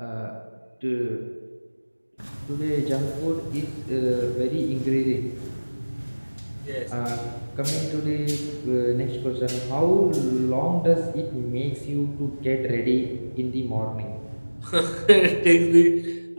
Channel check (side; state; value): both; inverted; correlation -1.00